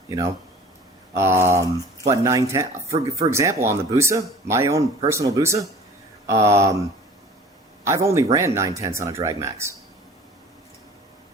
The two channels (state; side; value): normal; both; correlation 0.46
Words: you know? But 910, for example, on the Busa, my own personal Busa, I've only ran 9/10 on a drag max.